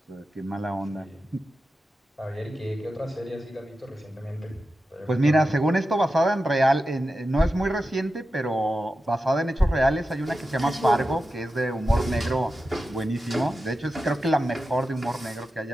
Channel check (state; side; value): normal; both; correlation 0.92